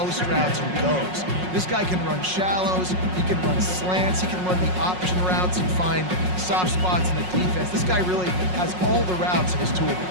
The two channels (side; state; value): left; late; 5.5 ms